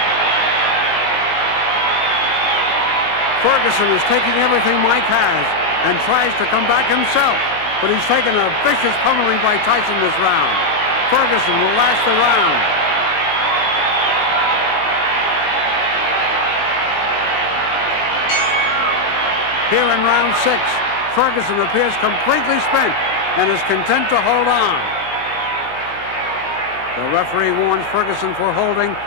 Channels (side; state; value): right; late; 19 ms